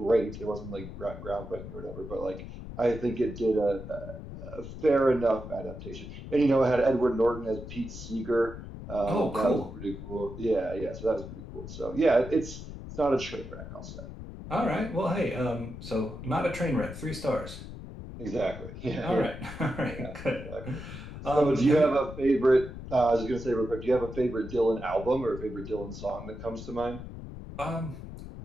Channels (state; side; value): noise; left; rumble, 11 dB below the sound